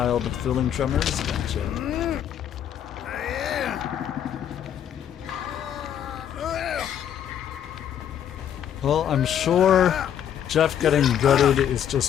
with feeling tremors. Gotcha. Well, I'm sure Jeff getting gutted is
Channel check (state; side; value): quieter; right; 9.6 dB